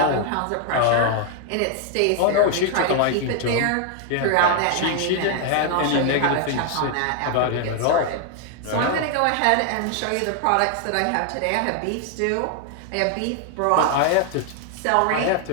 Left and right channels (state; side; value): different; both; correlation 0.00